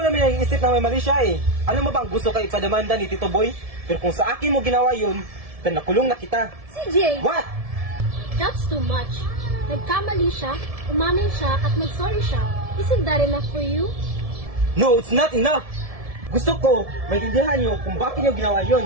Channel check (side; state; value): left; late; 1.7 ms